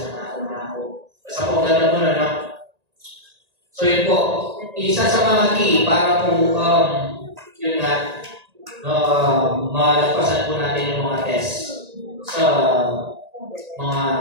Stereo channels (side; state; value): left; late; 1.8 ms